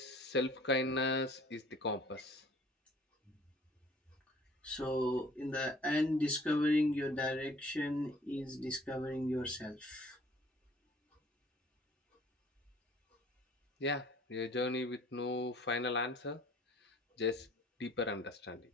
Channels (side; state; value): both; normal; correlation 0.54